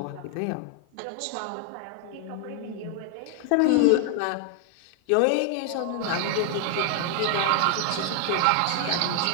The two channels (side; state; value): both; different; correlation 0.00